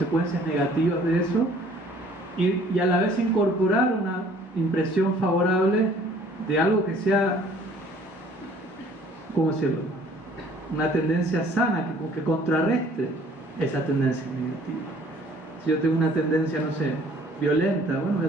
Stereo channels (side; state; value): both; normal; correlation 0.56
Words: negativas de eso, y a la vez incorporar una impresión favorable de algo que sea, ¿cómo decirlo?, una tendencia sana que contrarreste esa tendencia negativa. Si yo tengo una tendencia, no sé, violenta, bueno, voy a